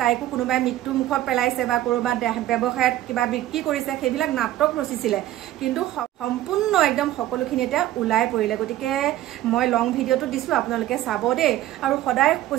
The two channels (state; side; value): quieter; left; 14.1 dB